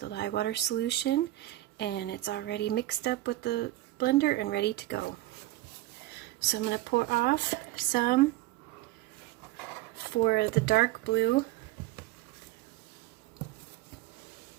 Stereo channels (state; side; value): quieter; left; 16.4 dB